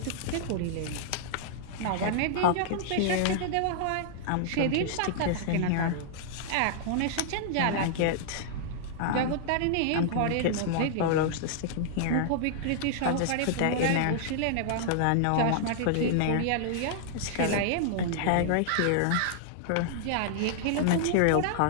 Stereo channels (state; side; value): different; both; correlation -0.01